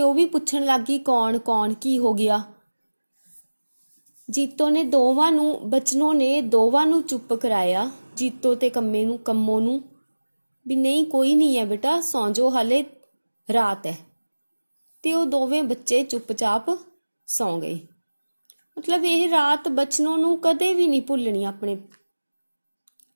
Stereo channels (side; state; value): both; inverted; correlation -1.00